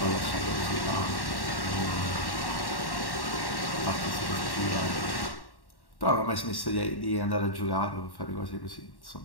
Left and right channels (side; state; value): right; late; 1.1 ms